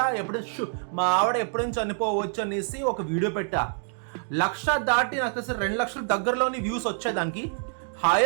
ఎప్పుడు చనిపోవచ్చు అనేసి ఒక వీడియో పెట్టా. 1,00,000 దాటి నాకు అసలు 2 లక్షల దగ్గరలోని వ్యూస్ వచ్చాయి. దానికి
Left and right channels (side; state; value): left; silent; 56 dB below the other